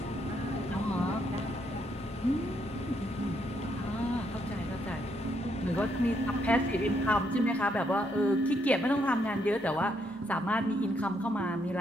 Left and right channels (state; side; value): normal; both; correlation 0.75